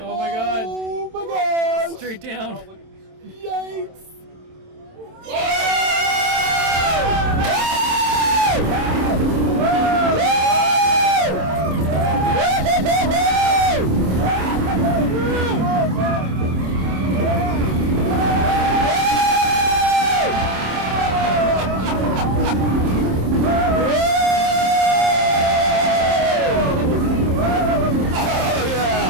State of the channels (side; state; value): left; late; 27 ms